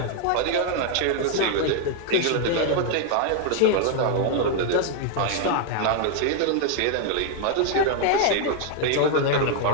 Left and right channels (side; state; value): both; different; correlation 0.00